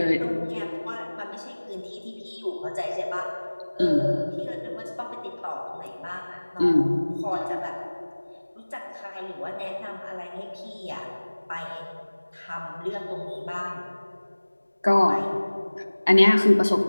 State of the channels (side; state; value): both; inverted; correlation -1.00